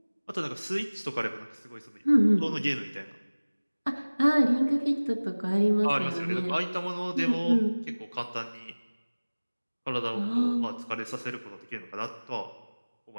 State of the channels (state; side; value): inverted; both; correlation -1.00